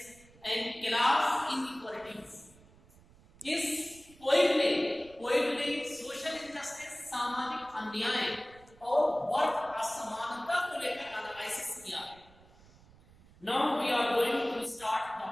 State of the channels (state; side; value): noise; right; rumble, 25 dB below the sound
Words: and class inequalities. इस poem ने social injustice, सामाजिक अन्याय और वर्ग असमानता को लेकर analysis किया. Now we are going to start the